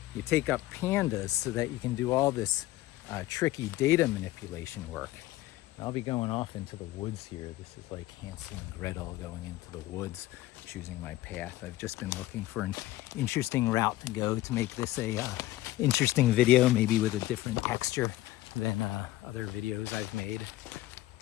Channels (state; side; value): quieter; right; 16.1 dB